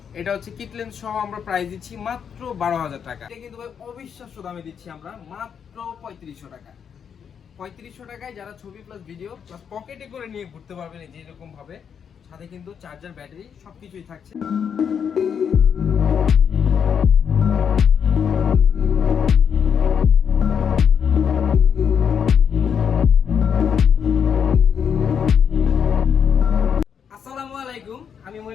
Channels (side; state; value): right; quieter; 7.5 dB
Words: এটা হচ্ছে কিট লেন্স সহ আমরা প্রাইস দিচ্ছি মাত্র 12,000 টাকা। এটা কিন্তু ভাই অবিশ্বাস্য দামে দিচ্ছি আমরা মাত্র 3500 টাকা। 3500 টাকায় যারা ছবি প্লাস ভিডিও প্লাস পকেটে করে নিয়ে ঘুরতে পারবেন এই যে এরকম ভাবে, সাথে কিন্তু চার্জার, ব্যাটারি সবকিছুই থাকছে। আসসালামু আলাইকুম, আমি